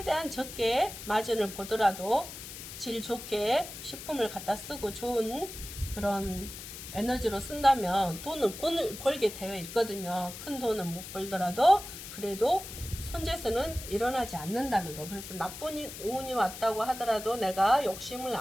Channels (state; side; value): noise; left; hiss, 11 dB below the sound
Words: 적게 마진을 보더라도 질 좋게 식품을 갖다 쓰고 좋은 그런 에너지로 쓴다면 돈을 벌게 되어 있거든요. 큰 돈은 못 벌더라도 그래도 손재수는 일어나지 않는다는 거. 그래서 나쁜 운이 왔다고 하더라도 내가 욕심을